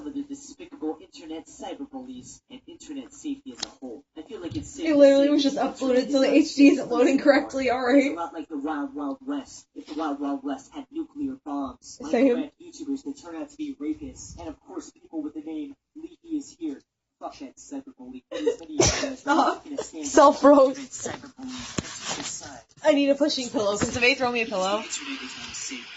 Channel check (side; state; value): both; identical; correlation 1.00